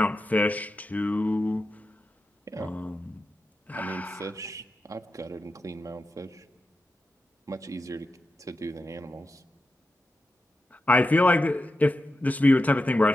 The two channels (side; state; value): both; normal; correlation 0.90